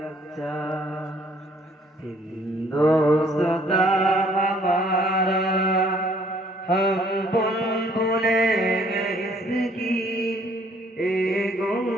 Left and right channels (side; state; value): both; normal; correlation 0.62